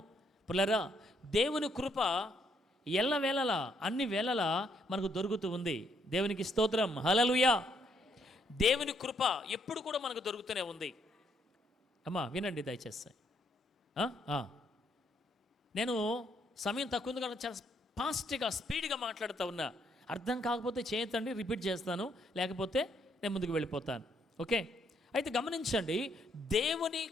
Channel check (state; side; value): normal; both; correlation 0.72